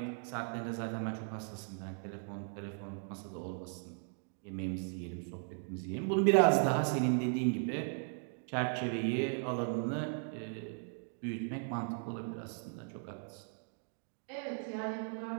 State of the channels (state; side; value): silent; left; 53 dB below the other